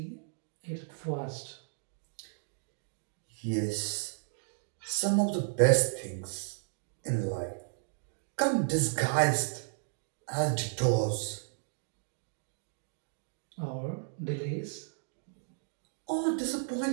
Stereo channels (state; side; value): silent; left; digital silence